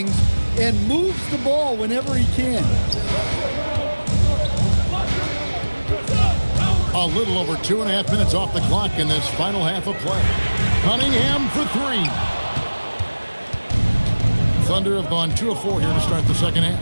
and moves the ball whenever he can. A little over 2.5 minutes off the clock in this final half of play. Cunningham for 3. Thunder have gone 2 of 4 here to start the second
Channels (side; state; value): both; inverted; correlation -1.00